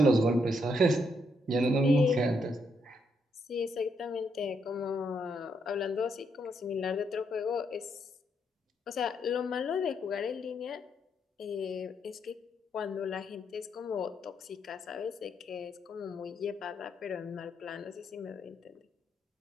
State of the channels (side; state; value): both; normal; correlation 0.76